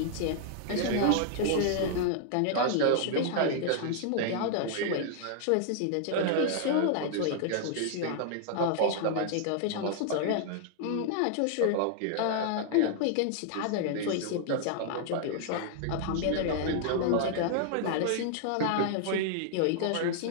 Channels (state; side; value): different; both; correlation -0.01